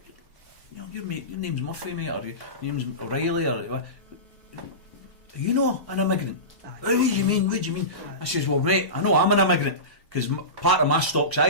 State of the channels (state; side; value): late; left; 1.1 ms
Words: know, your name's Murphy, mate, or your name's O'Reilly, or you know an immigrant. What do you mean? I says, well, mate, I know I'm an immigrant because part of my stock's